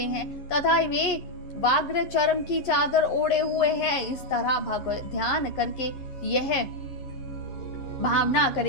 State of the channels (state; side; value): late; right; 11 ms